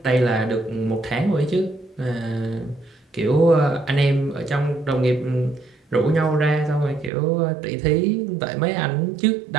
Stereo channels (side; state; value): left; drops out; at 7.1 s